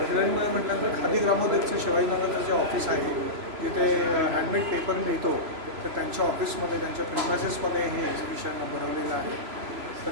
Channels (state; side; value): late; left; 3.0 ms